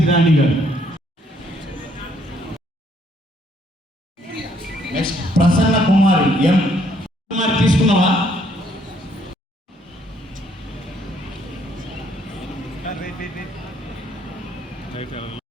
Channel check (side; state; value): both; normal; correlation 0.67